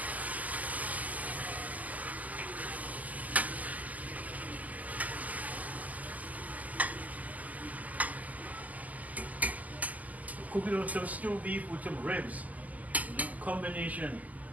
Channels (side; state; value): left; late; 0.078 ms